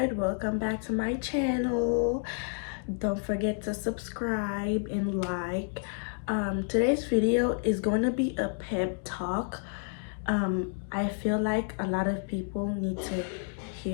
Welcome back to my channel. Don't forget to subscribe and like. Today's video is going to be a pep talk. I feel like a lot of people need to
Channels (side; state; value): right; silent; 58 dB below the other